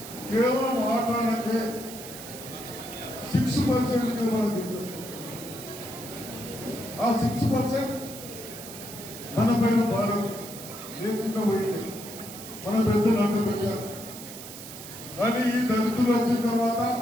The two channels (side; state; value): right; noise; hiss, 13 dB below the sound